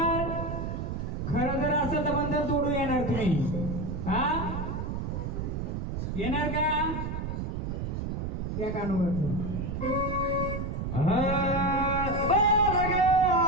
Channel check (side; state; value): right; noise; rumble, 3 dB below the sound